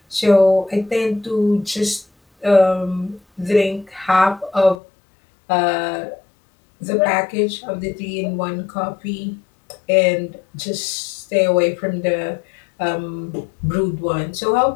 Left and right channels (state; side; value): drops out; right; at 4.8 s